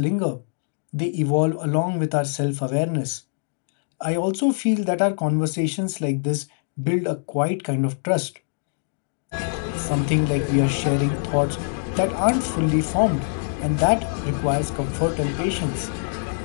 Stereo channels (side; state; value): right; silent; digital silence